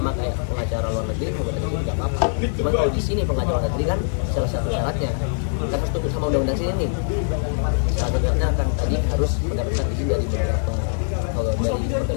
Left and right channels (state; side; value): silent; right; digital silence